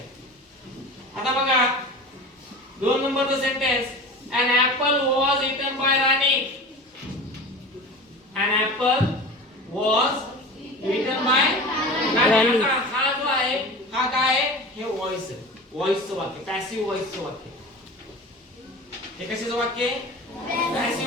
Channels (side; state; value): both; normal; correlation 0.34